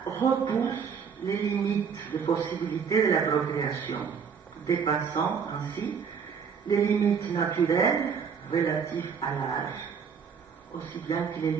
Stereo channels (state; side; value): quieter; left; 6.5 dB